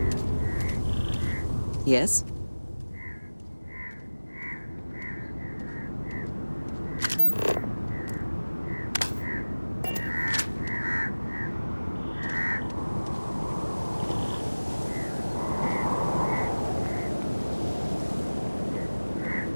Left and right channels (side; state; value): both; inverted; correlation -1.00